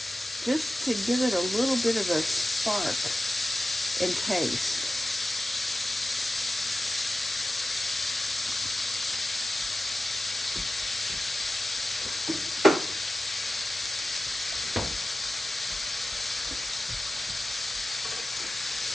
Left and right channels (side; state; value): both; normal; correlation 0.94